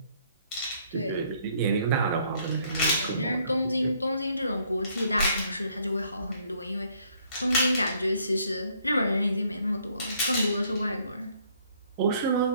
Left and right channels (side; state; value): both; inverted; correlation -0.66